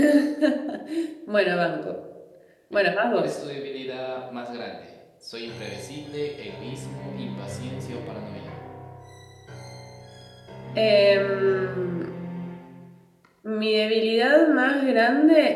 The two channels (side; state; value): both; identical; correlation 1.00